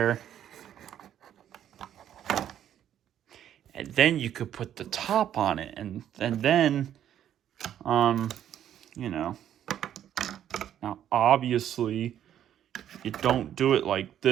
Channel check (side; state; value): left; quieter; 10.5 dB